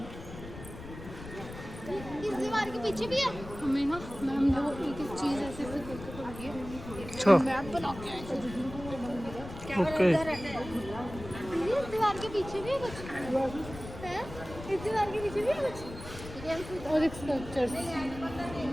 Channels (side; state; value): left; noise; rumble, 12 dB below the sound